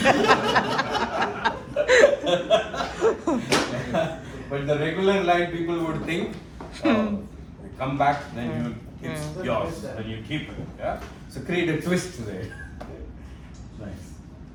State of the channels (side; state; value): both; identical; correlation 1.00